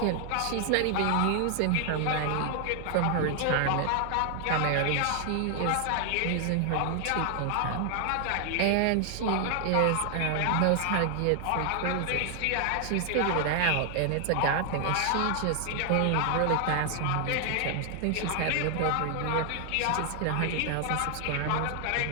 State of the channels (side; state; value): both; different; correlation 0.00